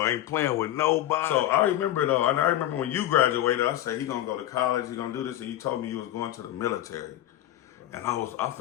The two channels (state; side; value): quieter; right; 13.5 dB